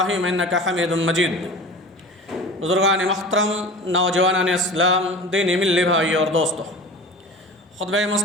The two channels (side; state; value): both; normal; correlation 0.36